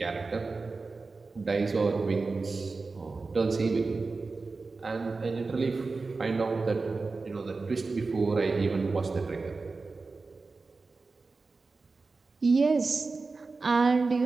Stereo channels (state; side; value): quieter; left; 4.0 dB